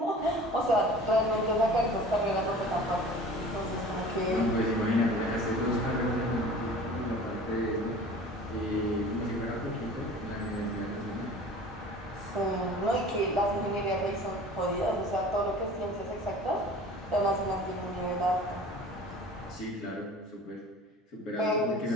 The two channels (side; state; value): both; normal; correlation 0.43